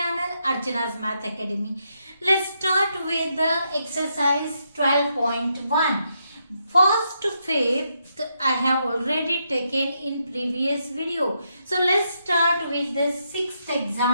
Archana's Math Academy. Let's start with the exercise 12.1. First to fifth I have already taken in previous video. So let's start with the sixth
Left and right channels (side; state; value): both; inverted; correlation -0.80